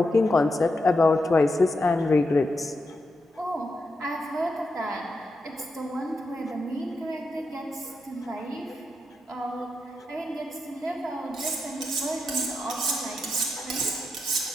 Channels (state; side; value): normal; both; correlation 0.85